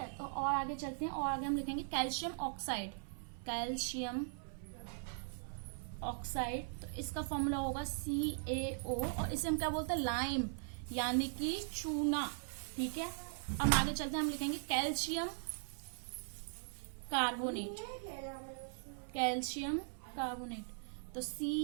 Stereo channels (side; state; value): left; silent; 51 dB below the other